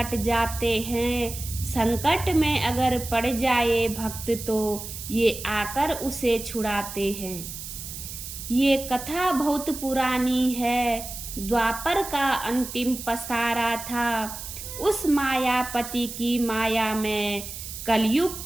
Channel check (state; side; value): noise; right; hiss, 10 dB below the sound